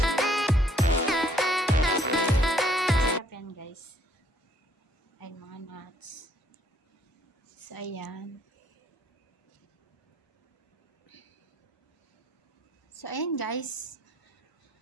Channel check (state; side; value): normal; both; correlation 0.65